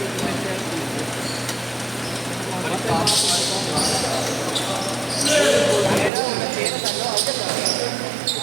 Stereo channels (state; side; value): drops out; left; at 6.1 s